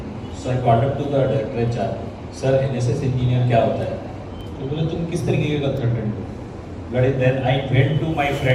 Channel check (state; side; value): identical; both; correlation 1.00